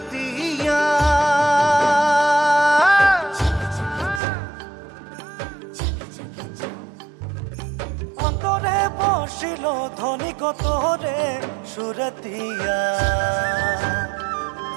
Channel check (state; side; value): drops out; left; at 4.2 s